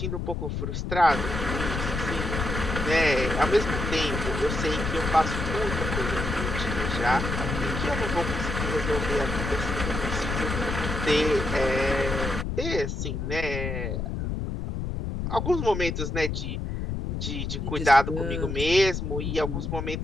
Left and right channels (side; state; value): left; noise; rumble, 3 dB below the sound